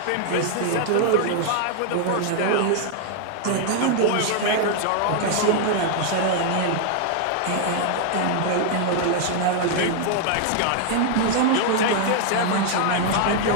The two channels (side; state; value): both; different; correlation 0.00